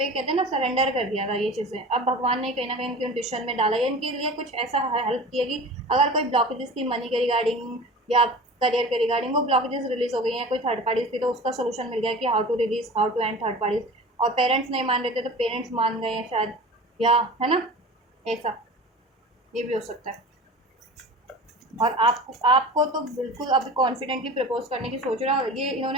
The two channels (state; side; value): normal; both; correlation 0.36